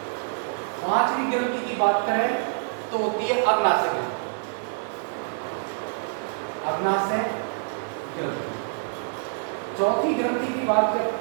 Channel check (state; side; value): silent; left; digital silence